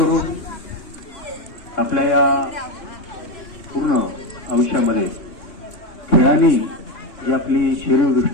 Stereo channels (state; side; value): late; right; 3.6 ms